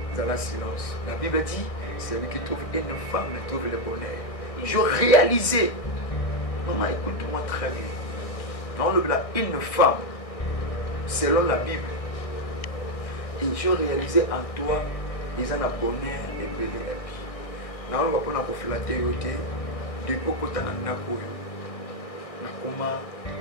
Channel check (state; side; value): late; right; 1.6 ms